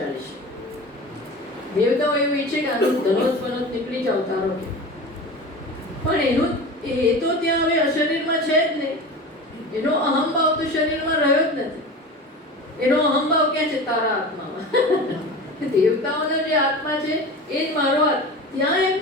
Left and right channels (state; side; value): normal; both; correlation 0.32